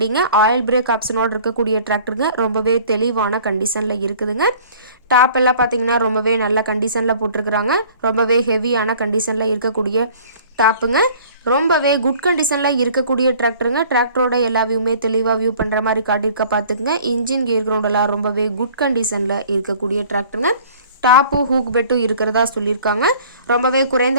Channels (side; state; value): both; inverted; correlation -0.50